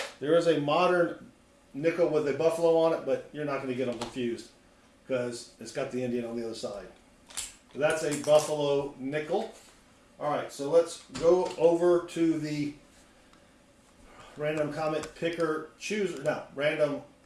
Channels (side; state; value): both; identical; correlation 1.00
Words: There is a modern nickel with a buffalo on it, but you're not going to get them confused because it's got the Indian on the other side. So that's a buffalo nickel. All right, so let's go over to the random comment picker chooser. No, random